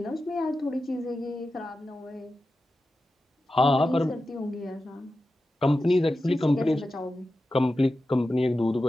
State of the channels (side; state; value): both; normal; correlation 0.92